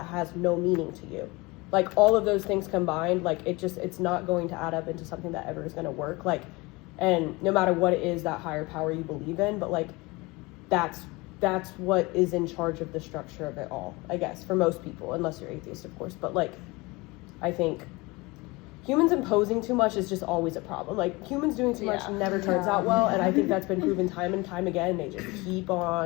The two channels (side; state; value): right; quieter; 24.0 dB